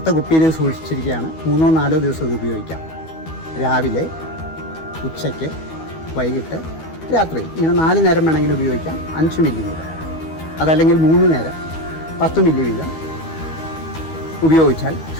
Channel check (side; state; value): right; late; 12 ms